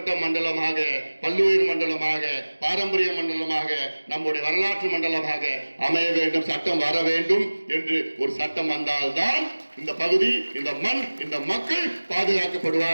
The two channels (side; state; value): both; inverted; correlation -1.00